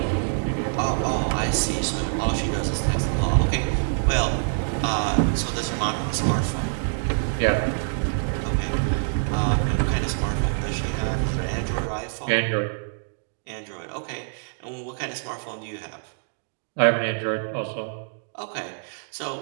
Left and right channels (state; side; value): silent; left; digital silence